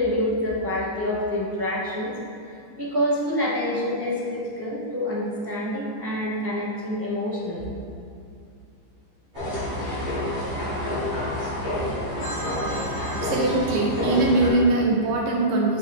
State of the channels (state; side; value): late; left; 15 ms